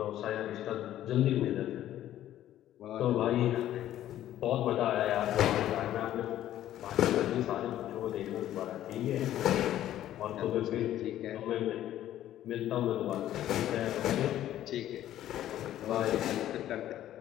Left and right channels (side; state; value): right; quieter; 12.6 dB